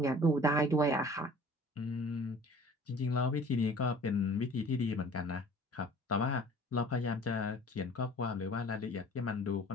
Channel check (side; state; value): both; normal; correlation 0.48